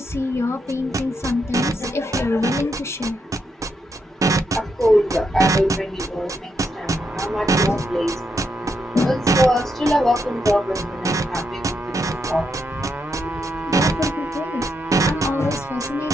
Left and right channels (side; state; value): both; normal; correlation 0.81